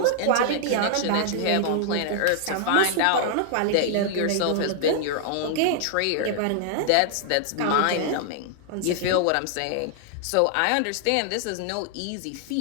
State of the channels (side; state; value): both; different; correlation -0.01